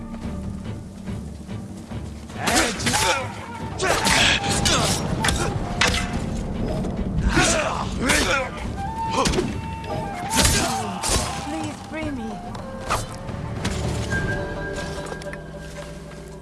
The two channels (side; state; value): both; identical; correlation 1.00